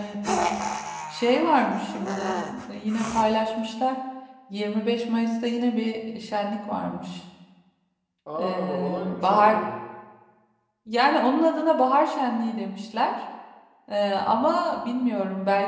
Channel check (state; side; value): identical; both; correlation 1.00